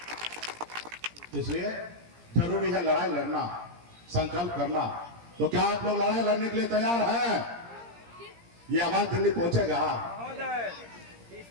इसलिए जरूरी है लड़ाई लड़ना, संकल्प करना। तो क्या आप लोग लड़ाई लड़ने के लिए तैयार हैं? ये आवाज दिल्ली पहुंचेगा।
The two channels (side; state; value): left; late; 17 ms